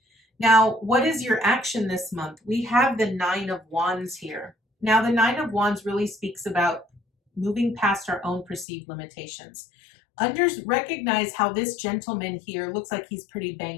Now, what is your action this month? We have the Nine of Wands here. Now, the Nine of Wands really speaks about moving past our own perceived limitations. Recognize how this gentleman here looks like he's pretty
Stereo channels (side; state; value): right; drops out; at 8.7 s